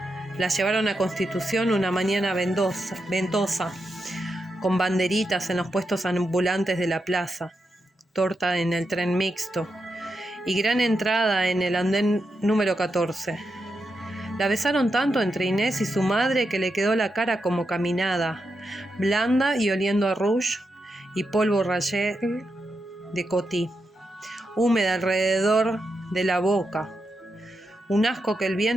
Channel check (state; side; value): normal; both; correlation 0.86